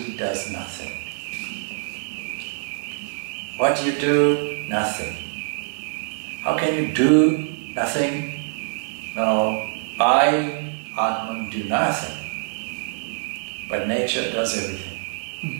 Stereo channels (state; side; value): silent; left; 62 dB below the other